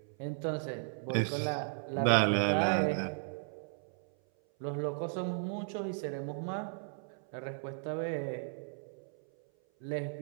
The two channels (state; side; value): silent; left; 54 dB below the other